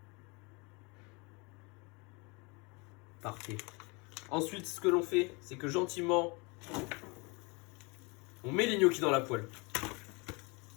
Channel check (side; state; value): right; quieter; 29.0 dB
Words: Parfait. Ensuite, ce que l'on fait, c'est que gentiment... on met les gnocchis dans la poêle.